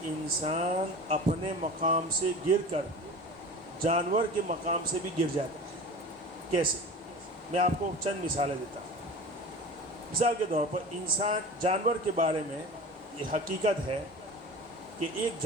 انسان اپنے مقام سے گر کر جانور کے مقام سے بھی گر جاتا ہے۔ کیسے؟ میں آپ کو چند مثالیں دیتا ہوں۔ مثال کے طور پر جانور کے بارے میں یہ حقیقت ہے کہ ایک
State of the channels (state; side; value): normal; both; correlation 0.35